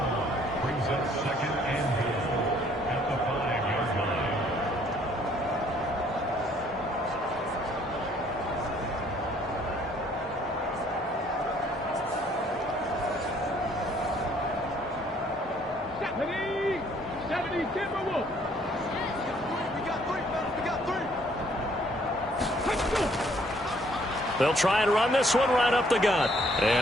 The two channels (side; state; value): both; normal; correlation 0.62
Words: They'll try and run this one right up the gut.